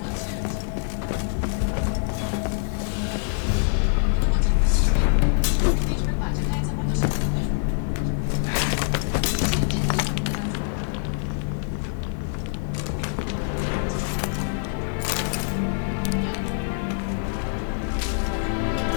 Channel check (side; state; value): right; silent; digital silence